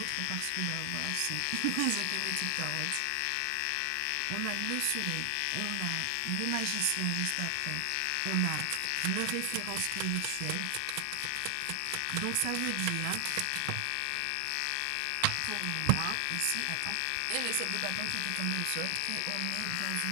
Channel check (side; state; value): both; different; correlation 0.00